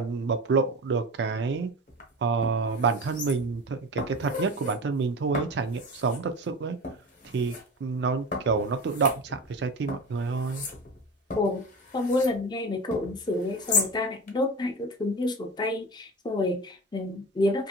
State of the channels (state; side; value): normal; both; correlation 0.28